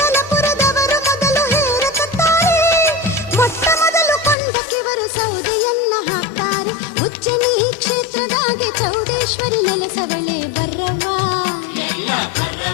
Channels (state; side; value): drops out; right; at 4.4 s